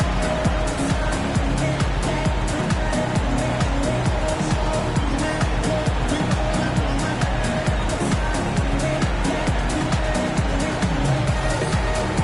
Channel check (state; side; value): identical; both; correlation 1.00